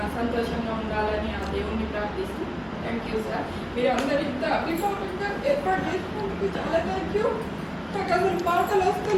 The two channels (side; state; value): both; identical; correlation 1.00